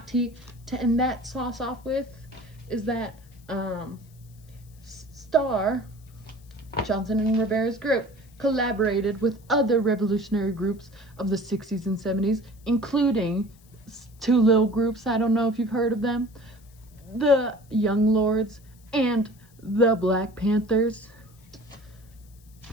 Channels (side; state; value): left; noise; hiss, 29 dB below the sound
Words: tea to end that sauce off with? Is that Star, Johnson and Rivera's group, collaborated with other revolutionary groups of the 60s and 70s, including two little groups, I don't know if you've heard of them, the Young Lords and the Black Panthers.